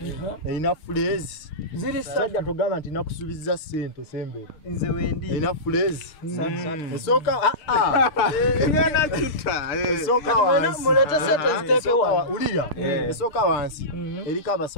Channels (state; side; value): late; right; 6.6 ms